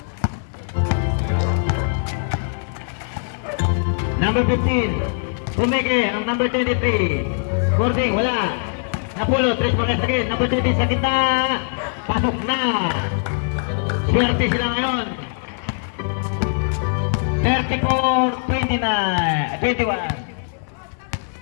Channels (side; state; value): right; silent; 65 dB below the other